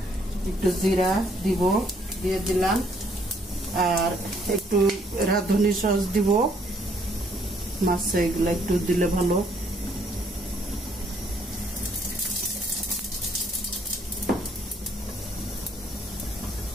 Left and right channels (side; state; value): both; normal; correlation 0.66